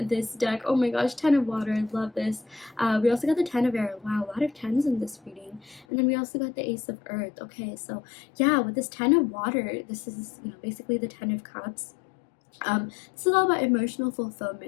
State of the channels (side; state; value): right; drops out; at 5.9 s